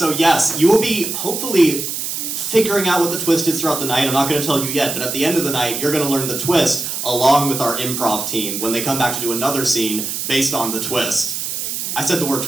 yes, you will be hopefully figuring out what the twist is throughout the night. I'm not going to tell you yet, but at the end of the night, you're going to learn the twist along with our improv team when they come back to do another scene based on the twist. I said the word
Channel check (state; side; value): noise; right; hiss, 4 dB below the sound